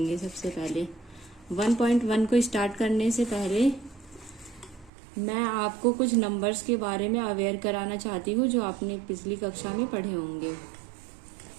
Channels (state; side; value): drops out; left; at 4.9 s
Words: सबसे पहले 1.1 को स्टार्ट करने से पहले मैं आपको कुछ नंबर्स के बारे में अवेयर कराना चाहती हूँ जो आपने पिछली कक्षा में पढ़े होंगे।